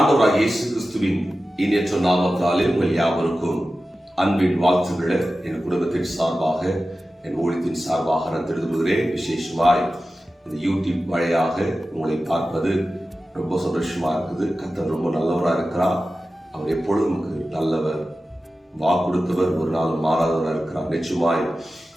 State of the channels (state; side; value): normal; both; correlation 0.94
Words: இயேசு கிறிஸ்துவின் இனியற்ற நாமத்தாலே உங்கள் யாவருக்கும் அன்பின் வாழ்த்துக்களை என் குடும்பத்தின் சார்பாக, என் ஊழியத்தின் சார்பாக நான் தெரிவிக்கிறேன். விசேஷமாய் இந்த யூடியூப் வழியாக உங்களை பார்ப்பது ரொம்ப சந்தோஷமா இருக்குது. கர்த்தர் ரொம்ப நல்லவராக இருக்கிறார். அவர் எப்பொழுதும் நமக்கு நல்லவர், வாக்கு கொடுத்தவர், ஒரு நாள் மாறாதவராக இருக்கிறார். நிச்சயமாய்